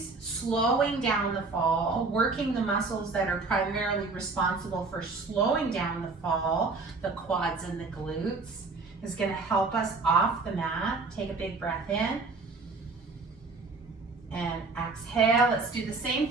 slowing down the fall, working the muscles that are primarily responsible for slowing down the fall, the quads and the glutes, is going to help us off the mat. Take a big breath in and exhale. Let's do the same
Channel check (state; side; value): quieter; left; 3.9 dB